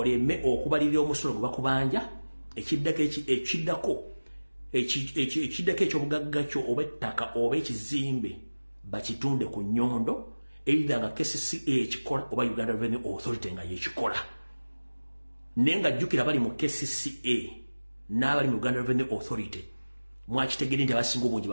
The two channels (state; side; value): inverted; both; correlation -1.00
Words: okubalirira omusolo gwe bakubanja ekiddako eky'obugagga kyo oba ettaka oba ekizimbe bakitunde ku nnyondo either nga KCCA ekikola oba Uganda Revenue Authority nga yekikola. Naye nga jjukira bali mu KCCA n'abali mu Uganda Revenue Authority mwakitegedde nti abasinga obungi